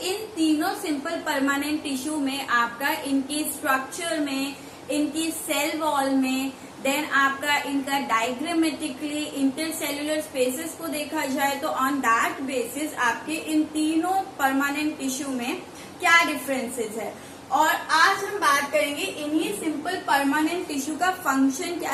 इन तीनों सिंपल परमानेंट टिश्यू में आपका इनकी स्ट्रक्चर में, इनकी सेल वॉल में, देन आपका इनका डायग्रामेटिकली इंटरसेल्युलर स्पेसेस को देखा जाए तो ऑन दैट बेसिस आपके इन तीनों परमानेंट टिश्यू में क्या डिफरेंसेस है। और आज हम बात करेंगे इन्हीं सिंपल परमानेंट टिश्यू का फंक्शन क्या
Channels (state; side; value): identical; both; correlation 1.00